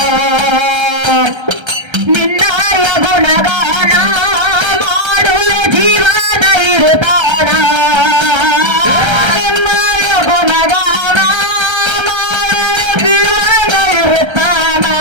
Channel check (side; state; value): left; late; 1.3 ms